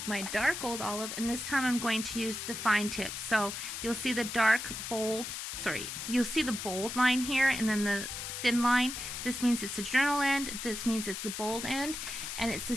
my dark Old Olive, and this time I'm going to use the fine tip. So you'll see the you'll see the bold line here and then the thin line. This means it's the journal end, this means it's the bold end, and it's the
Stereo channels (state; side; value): noise; left; hiss, 6 dB below the sound